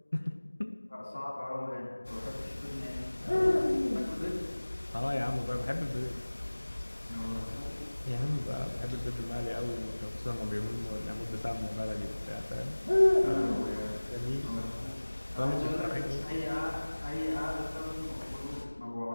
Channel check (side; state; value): both; inverted; correlation -1.00